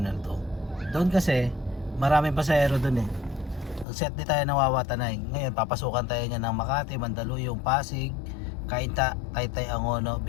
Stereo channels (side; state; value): right; drops out; at 3.9 s